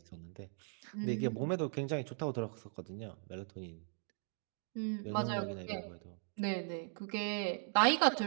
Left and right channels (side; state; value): left; silent; 52 dB below the other